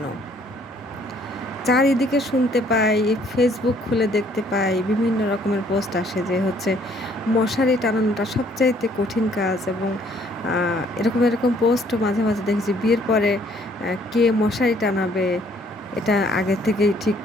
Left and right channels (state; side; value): normal; both; correlation 0.62